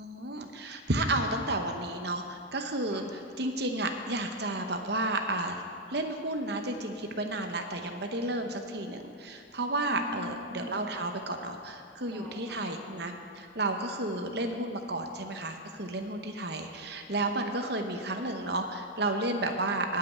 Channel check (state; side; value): normal; both; correlation 0.02